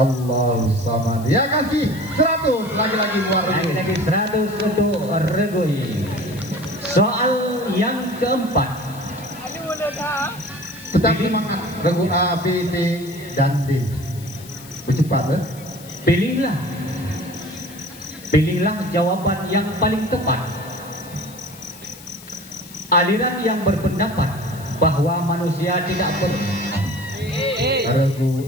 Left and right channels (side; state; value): left; noise; hiss, 19 dB below the sound